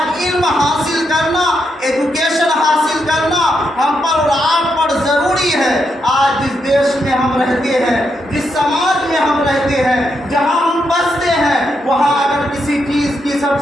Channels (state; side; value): normal; both; correlation 0.81